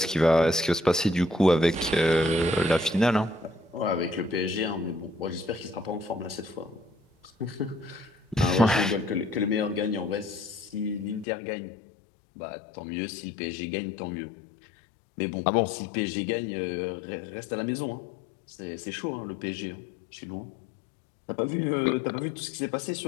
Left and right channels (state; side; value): drops out; right; at 11.2 s